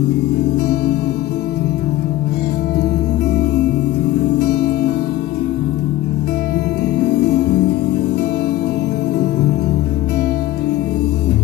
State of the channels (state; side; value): quieter; right; 15.5 dB